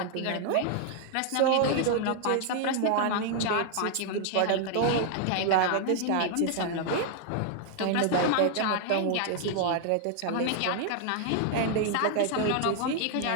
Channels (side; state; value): both; different; correlation 0.00